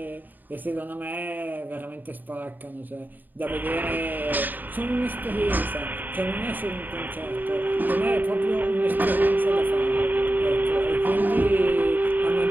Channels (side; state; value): left; late; 0.088 ms